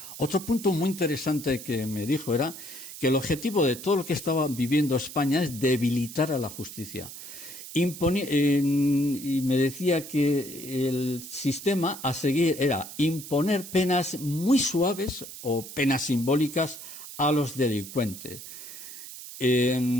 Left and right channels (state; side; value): noise; right; hiss, 12 dB below the sound